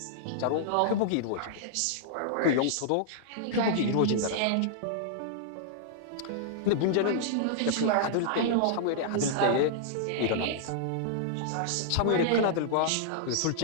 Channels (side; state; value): both; different; correlation -0.01